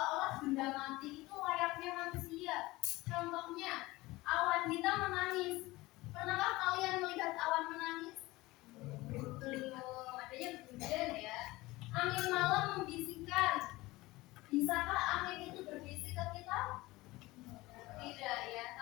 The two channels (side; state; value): right; quieter; 20.0 dB